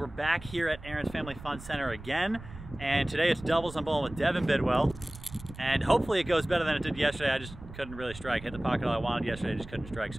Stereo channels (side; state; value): right; noise; rumble, 15 dB below the sound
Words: back here at Aaron's Family Fun Center again, and today it's doubles. I'm bowling with Devin Bidwell, and hopefully it goes better than it did yesterday. I just couldn't really strike. Hit the pocket all I wanted yesterday, just couldn't strike.